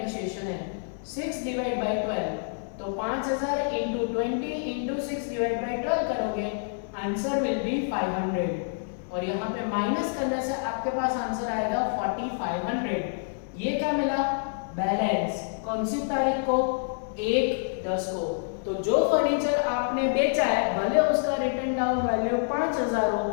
है। 6 डिवाइड बाय 12, तो 5000 इंटू 20 इंटू 6 डिवाइड बाय 12 करोगे, आंसर विल बी 500। और यहाँ पे माइनस करने से आपके पास आंसर आएगा 4500। ये क्या मिला, बैलेंस। कौन सी तारीख को, 1/10 को। तो जो फर्नीचर आपने बेचा है भले उसका रिटन डाउन वैल्यू 5000 हो,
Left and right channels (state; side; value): silent; right; 60 dB below the other